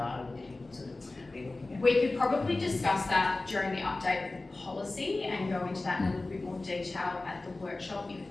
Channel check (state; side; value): quieter; right; 3.1 dB